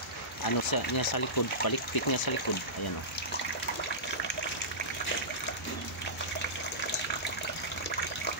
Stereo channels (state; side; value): normal; both; correlation -0.18